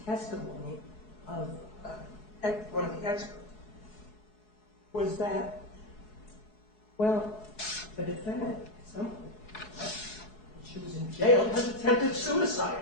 testimony of one of the experts was that, well, the defendant at some point, when she was in jail, has attempted suicide.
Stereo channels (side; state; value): right; late; 4.7 ms